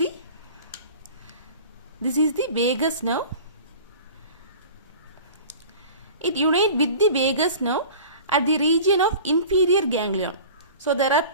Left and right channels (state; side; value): inverted; both; correlation -0.40